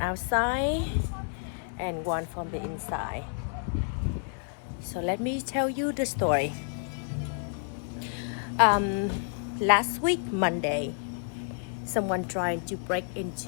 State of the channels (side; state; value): right; silent; 58 dB below the other